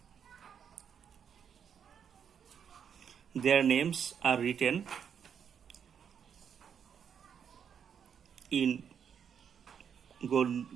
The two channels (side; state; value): left; quieter; 7.7 dB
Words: their names are written in